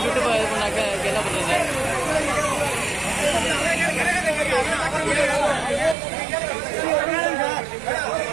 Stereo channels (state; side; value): drops out; left; at 6.0 s